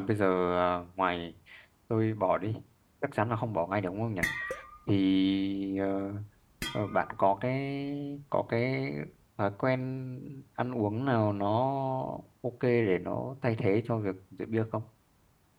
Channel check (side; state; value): both; identical; correlation 1.00